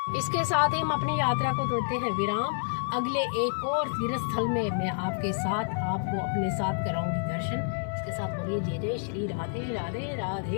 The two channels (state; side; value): silent; right; digital silence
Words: इसके साथ ही हम अपनी यात्रा को देते हैं विराम। अगले एक और तीर्थ स्थल में मैं आपके साथ आपको अपने साथ कराऊंगी दर्शन। इसके साथ बोलिए जय जय श्री राधे राधे